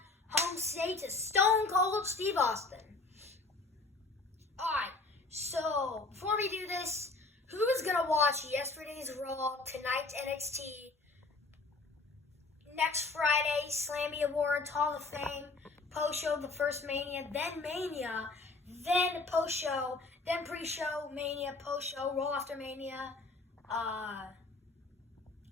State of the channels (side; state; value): right; quieter; 3.6 dB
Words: home state to Stone Cold Steve Austin. Alright, so before we do this, who is going to watch yesterday's Raw, tonight's NXT, next Friday, Slammy Awards, Hall of Fame, post-show, the first Mania, then post-show, then pre-show, Mania, post-show, Raw after Mania, NXT